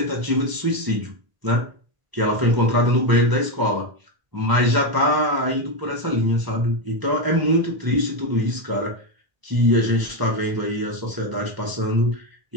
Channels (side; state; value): left; late; 1.0 ms